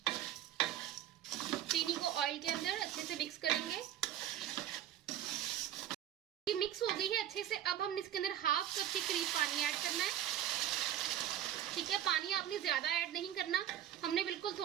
चीनी को ऑयल के अंदर अच्छे से मिक्स करेंगे। ये मिक्स हो गई है अच्छे से। अब हम इसके अंदर हाफ कप के करीब पानी ऐड करना है। ठीक है, पानी आपने ज्यादा ऐड नहीं करना, हमने बिल्कुल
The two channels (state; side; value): quieter; left; 11.3 dB